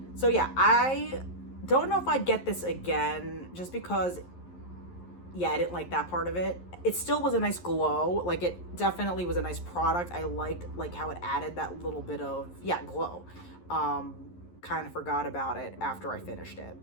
So yeah, I don't know if I'd get this again, just because, yeah, I didn't like that part of it. It still was a nice glow. Like, it definitely was a nice product. I liked like how it added that little bit of, yeah, glow. Kind of forgot about it after I finished it.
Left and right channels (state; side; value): late; right; 11 ms